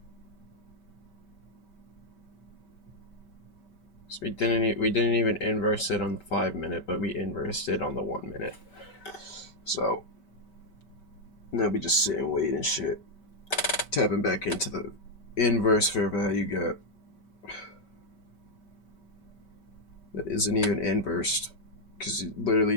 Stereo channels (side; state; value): right; late; 5.2 ms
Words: So we didn't even inverse it on the 5 minute, but we inversed it on the 1 minute. So now we just sit and wait and shit. Tapping back into the inverse fair value gap. That isn't even inversed, because you literally